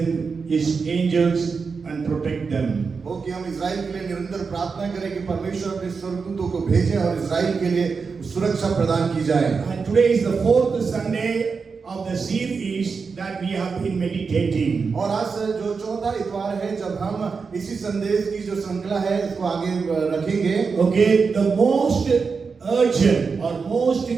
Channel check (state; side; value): quieter; left; 5.1 dB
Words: His angels and protect them. हो कि हम इजराइल के लिए निरंतर प्रार्थना करें कि परमेश्वर अपने स्वर्गदूतों को भेजे और इजराइल के लिए सुरक्षा प्रदान की जाए। And today is the fourth Sunday of the series that we have been meditating. और आज जो चौथा इतवार है जब हम इसी संदेश की जो श्रृंखला है इसको आगे रखेंगे। Okay, the most urgent or most